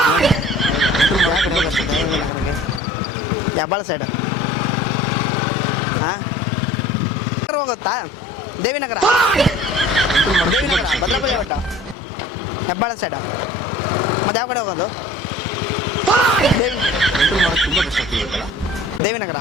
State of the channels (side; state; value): both; normal; correlation 0.47